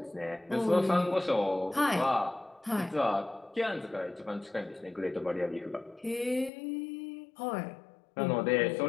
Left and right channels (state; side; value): drops out; right; at 6.5 s